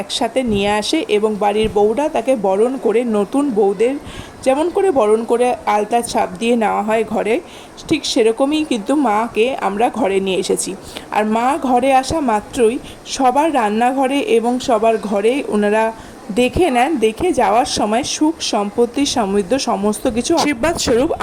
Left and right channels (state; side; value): identical; both; correlation 1.00